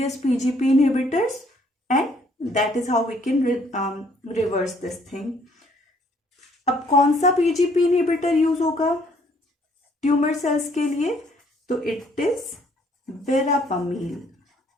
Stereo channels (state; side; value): normal; both; correlation 0.64